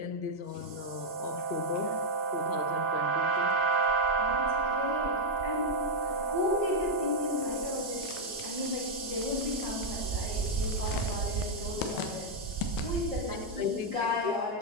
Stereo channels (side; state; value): left; late; 1.6 ms